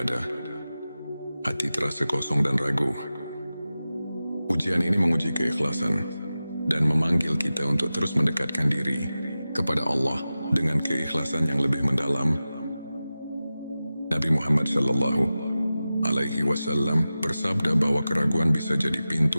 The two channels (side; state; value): both; inverted; correlation -0.95